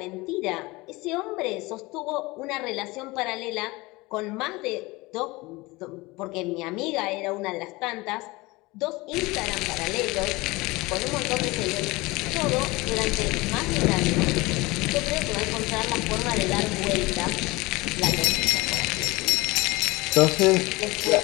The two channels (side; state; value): right; quieter; 22.5 dB